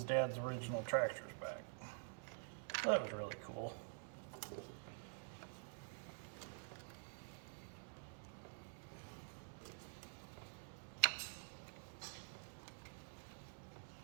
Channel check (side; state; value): left; silent; digital silence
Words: dad's original tractors back. So that was really cool.